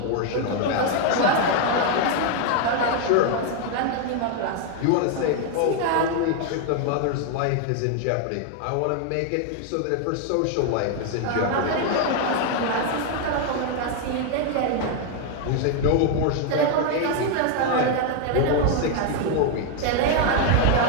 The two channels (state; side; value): different; both; correlation 0.01